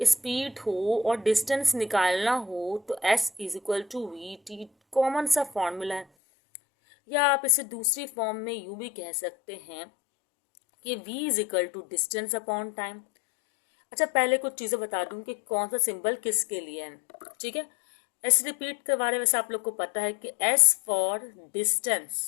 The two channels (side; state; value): right; drops out; at 6.1 s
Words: स्पीड हो और डिस्टेंस निकालना हो तो s is equal to v t, common सा फॉर्मूला है। या आप इसे दूसरी फॉर्म में यूं भी कह सकते हैं कि v is equal to distance upon time. अच्छा, पहले कुछ चीज़ें बता दूं कि कौन सा सिंबल किसके लिए है। ठीक है, एस रिपीट करवा रहे, वैसे आप लोग को पता है कि s फॉर